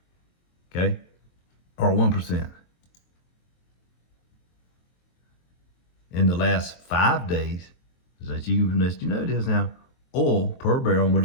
Okay, or 1%. In the last 5 days, as you know this now, oil per barrel, and we're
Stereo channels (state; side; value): late; right; 23 ms